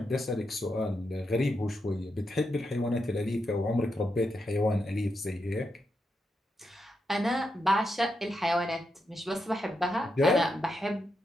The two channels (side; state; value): both; normal; correlation 0.84